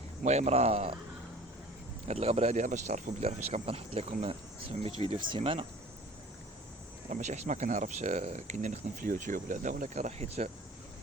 المهم راه هاد الغبرة هادي باش تعرفوا بلي راه فاش كنبقى نحط لكم 700 فيديو في السيمانة، راه ماشي حيت ما كنعرفش كاين نخدم في اليوتيوب ولا لا، ولكن راه حيت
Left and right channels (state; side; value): normal; both; correlation 0.45